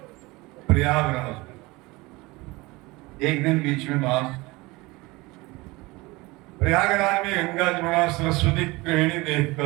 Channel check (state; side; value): quieter; left; 22.5 dB